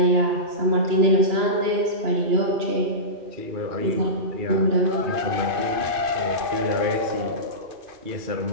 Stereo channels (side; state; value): left; late; 2.5 ms